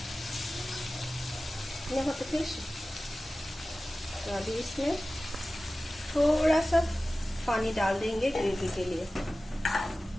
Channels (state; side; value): normal; both; correlation 0.96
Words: यहाँ पे फिश, तो अभी इसमें थोड़ा सा पानी डाल देंगे ग्रेवी के लिए।